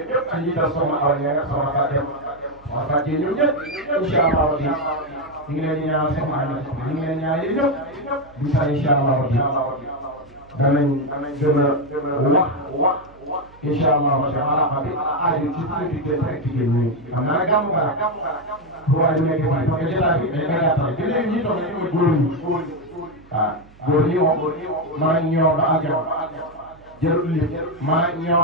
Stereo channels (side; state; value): right; noise; hum, 25 dB below the sound